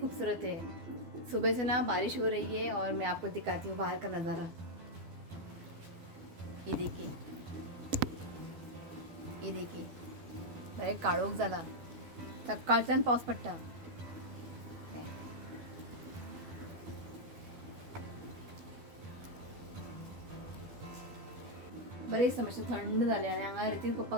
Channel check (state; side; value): late; left; 12 ms